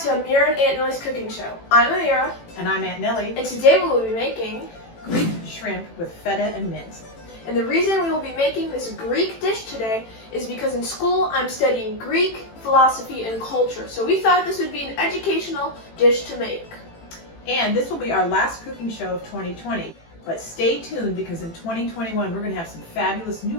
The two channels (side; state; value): right; late; 18 ms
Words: to Amira and Aunt Nellie's cooking show. I'm Amira. And I'm Aunt Nellie. And today we will be making Greek shrimp with feta and mint. And the reason we will be making this Greek dish today is because in school I'm studying Greek philosophy and culture. So we thought this would be an educational dish to make. And this will be our last cooking show of 2020. But stay tuned because in 2021 we're going to have some fabulous new